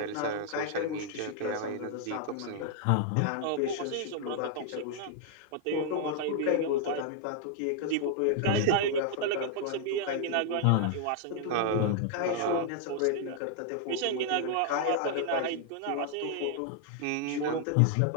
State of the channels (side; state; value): both; different; correlation 0.00